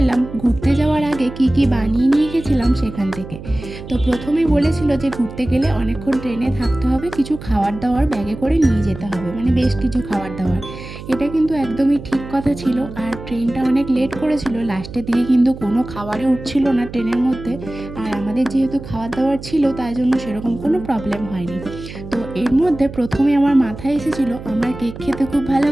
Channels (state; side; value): noise; right; hum, 13 dB below the sound